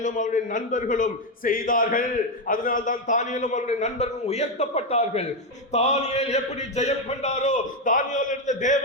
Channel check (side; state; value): both; normal; correlation 0.07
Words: அவருடைய நண்பர்களும் செய்தார்கள். அதனால்தான் தானியேலும் அவருடைய நண்பர்களும் உயர்த்தப்பட்டார்கள். தானியேல் எப்படி ஜெயம் கொண்டாரோ, தானியேல் இருந்த